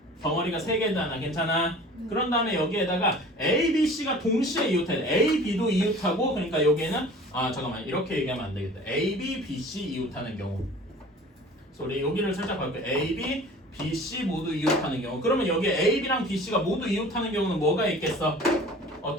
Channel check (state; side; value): normal; both; correlation 0.44